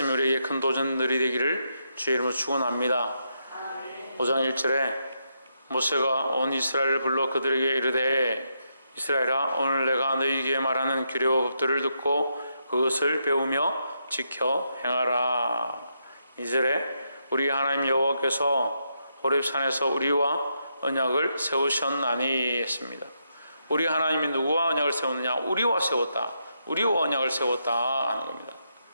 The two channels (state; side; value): inverted; both; correlation -0.81